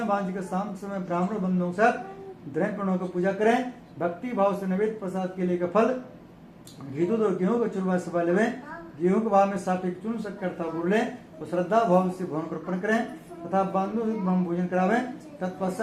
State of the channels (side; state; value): both; identical; correlation 1.00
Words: भगवान जी के शाम के समय ब्राह्मण बंधुओं के साथ द्रव्य प्रणों को पूजा करें। भक्ति भाव से नैवेद्य प्रसाद के लिए का फल घी दूध और गेहूं का चूरमा से लेवे, गेहूं के भाव में सात्विक चूर्ण शक्कर था गुड़ लें और श्रद्धा भाव से भवन को अर्पण करें तथा बंधु ब्रह्म भोजन करावें,